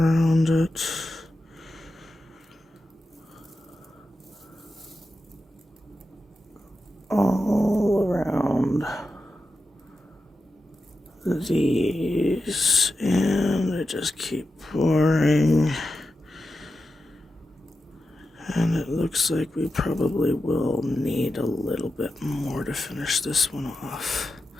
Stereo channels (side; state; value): both; normal; correlation 0.90